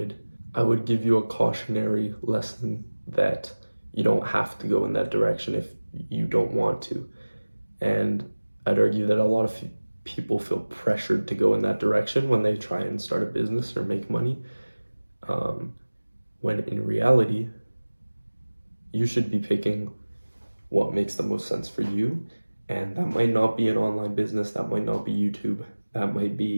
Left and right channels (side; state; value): both; inverted; correlation -1.00